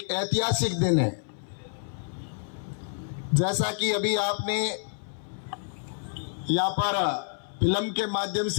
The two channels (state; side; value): silent; right; 57 dB below the other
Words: ऐतिहासिक दिन है। जैसा कि अभी आपने यहाँ पर फिल्म के माध्यम